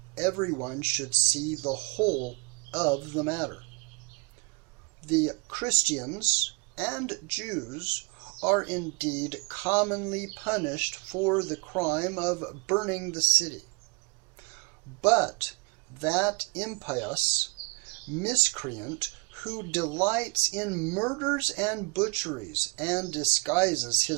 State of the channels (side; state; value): left; quieter; 29.0 dB